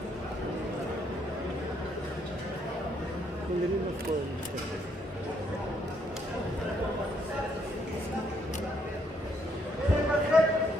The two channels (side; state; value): both; normal; correlation 0.71